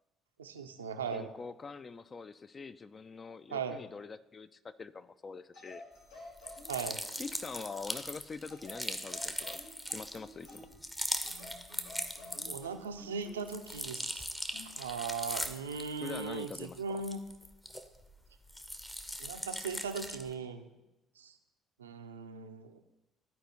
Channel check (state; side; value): normal; both; correlation 0.31